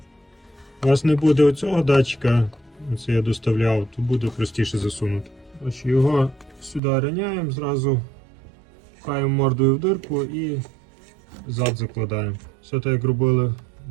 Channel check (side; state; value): left; drops out; at 6.8 s